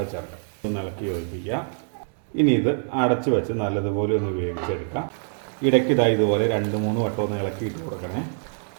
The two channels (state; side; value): silent; left; 62 dB below the other